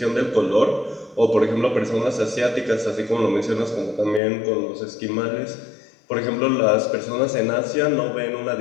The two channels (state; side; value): drops out; right; at 4.2 s